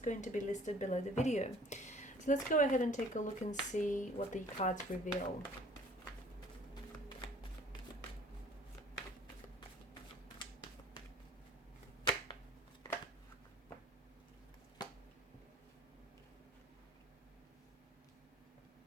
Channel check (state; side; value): normal; both; correlation 0.52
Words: to be listed below the video. So let's go ahead and take a look and see what the cards reveal.